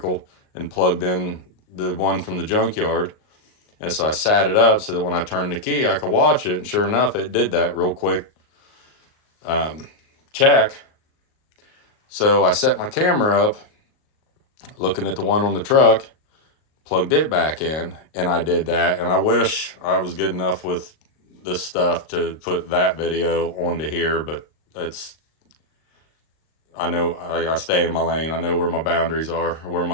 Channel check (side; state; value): right; late; 38 ms